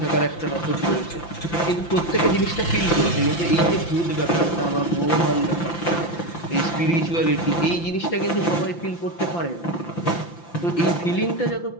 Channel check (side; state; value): right; late; 5.9 ms